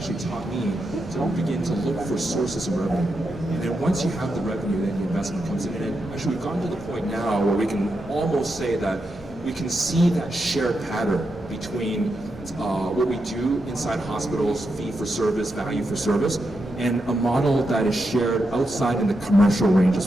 taught me to begin to look for sources of revenue. And then once you have the revenue, then the investment comes in. And actually we've gotten to the point now where we can almost say that we can see that shared pattern between what we do inside hospitals, fee for service, value for service, and a model that is shared outside in the commercial range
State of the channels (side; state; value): both; normal; correlation 0.85